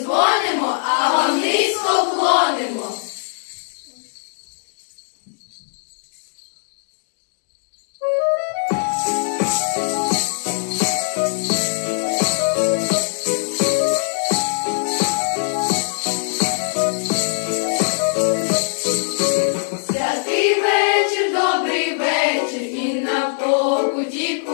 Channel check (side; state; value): right; silent; digital silence